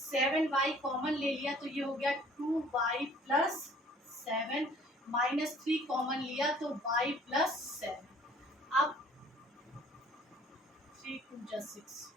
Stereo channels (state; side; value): normal; both; correlation 0.55